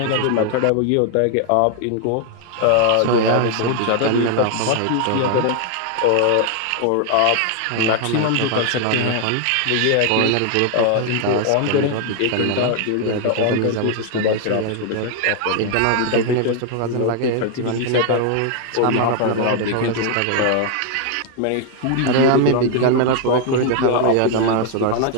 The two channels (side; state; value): both; different; correlation 0.00